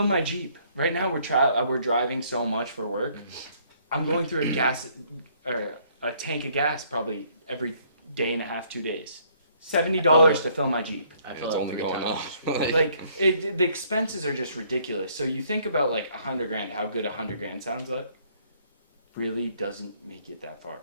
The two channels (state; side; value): inverted; both; correlation -0.64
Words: my Jeep. Right now, we're driving so much for work. I'm going through a tank of gas probably every day and a half, 2 days. $70 to fill my Jeep. I Yeah, feel it's like only 3 going times. up. The expenses are just ridiculous. So you think about like $100,000, how good $100,000 sounds like. Really doesn't make it that far.